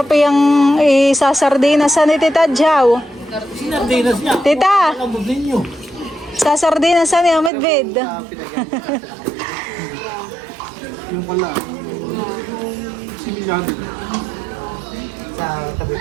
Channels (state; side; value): drops out; left; at 7.5 s